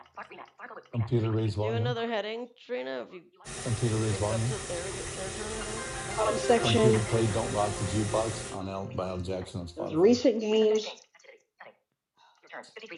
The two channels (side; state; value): both; identical; correlation 1.00